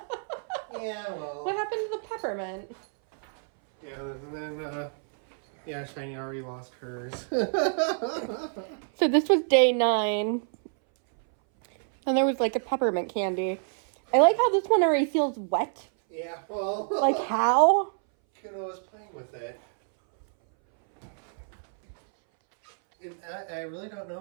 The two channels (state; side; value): silent; left; 60 dB below the other